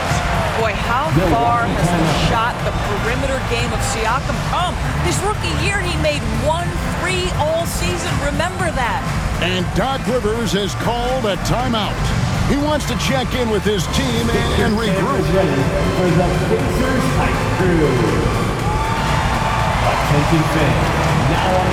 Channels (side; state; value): both; identical; correlation 1.00